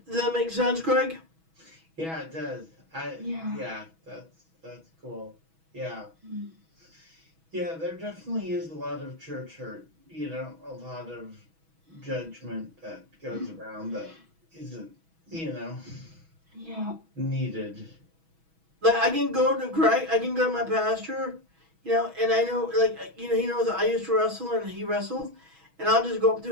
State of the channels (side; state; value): left; late; 6.2 ms